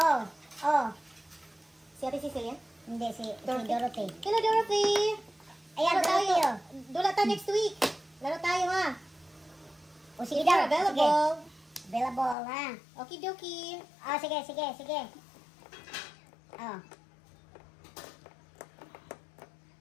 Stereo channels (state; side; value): drops out; right; at 12.4 s